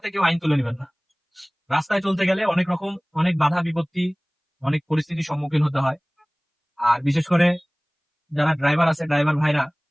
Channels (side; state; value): both; identical; correlation 1.00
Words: কেউ আইন তুলে নেবেন না। রাস্তায় চলতে গেলে অনেক রকম, অনেক বাধা বিপত্তি, অনেক পরিস্থিতির সম্মুখীন হতে হয়। আর বিশেষ করে যারা ড্রাইভার আছে, ড্রাইভার ভাইরা,